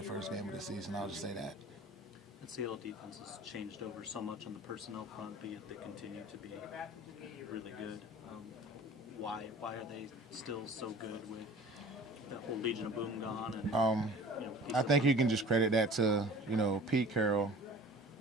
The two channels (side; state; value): both; normal; correlation 0.44